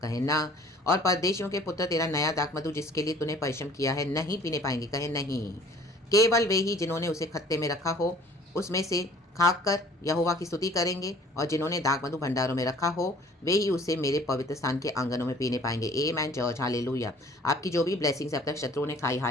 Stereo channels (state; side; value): normal; both; correlation 0.52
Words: कहे ना। और परदेशियों के पुत्र तेरा नया दाखमधु जिसके लिए तूने परिश्रम किया है नहीं पीने पाएंगे, कहे नहीं। केवल वे ही जिन्होंने उसे खत्ते में रखा हो उसमें से खाकर यहोवा की स्तुति करेंगे, और जिन्होंने दाखमधु भंडारों में रखा हो वे ही उसे मेरे पवित्र स्थान के आंगनों में पीने पाएंगे। आमेन चर्च हालेलुया। आपकी जो भी ब्लेसिंग्स अब तक शत्रुओं ने खाई,